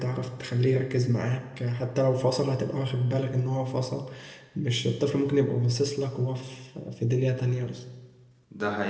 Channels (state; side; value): identical; both; correlation 1.00